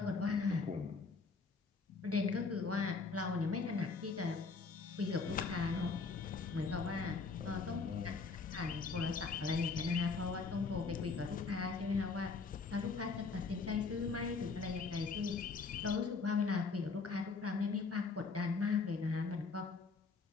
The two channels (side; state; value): right; quieter; 4.5 dB